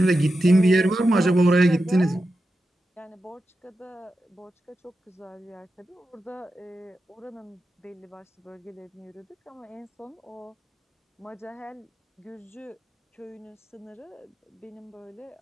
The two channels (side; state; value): both; normal; correlation 0.90